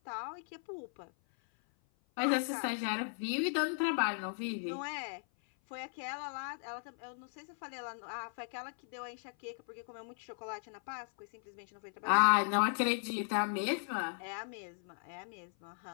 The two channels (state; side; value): silent; right; 53 dB below the other